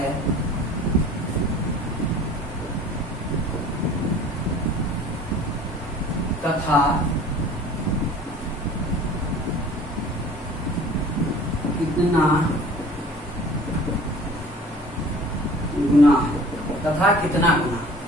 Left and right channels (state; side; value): normal; both; correlation 0.46